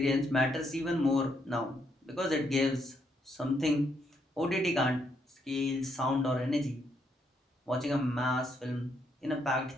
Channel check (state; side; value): normal; both; correlation 0.75